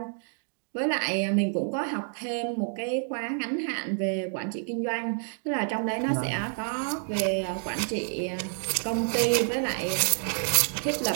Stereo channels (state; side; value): silent; left; 59 dB below the other